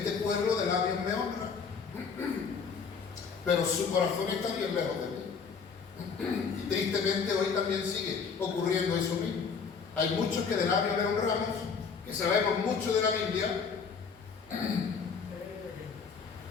pueblo de labios me honra, pero su corazón está bien lejos de mí. Y tristemente hoy también sigue ocurriendo eso mismo. Hay muchos que de labios le honramos, que sabemos mucho de la Biblia,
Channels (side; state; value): right; quieter; 5.7 dB